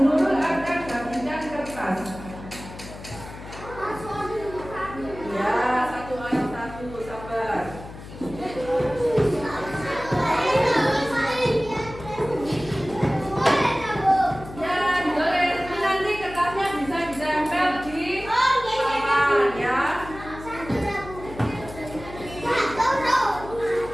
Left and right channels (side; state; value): left; noise; hum, 14 dB below the sound